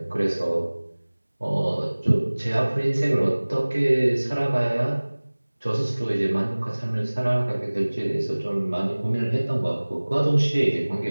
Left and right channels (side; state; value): both; inverted; correlation -1.00